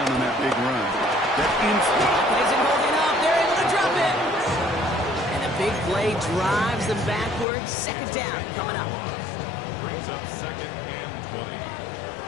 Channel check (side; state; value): right; drops out; at 7.5 s